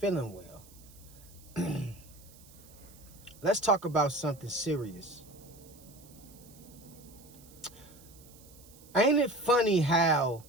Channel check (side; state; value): right; noise; hiss, 23 dB below the sound